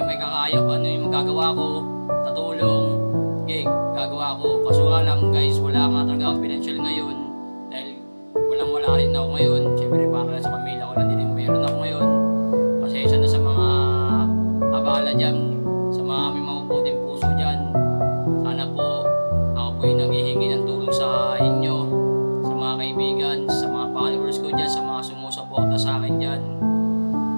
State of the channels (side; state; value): both; inverted; correlation -1.00